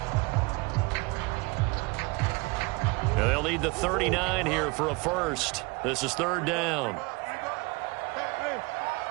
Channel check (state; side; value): quieter; left; 26.0 dB